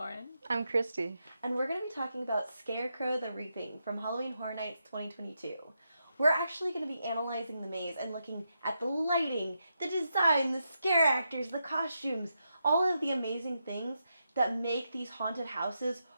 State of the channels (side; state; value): both; inverted; correlation -0.84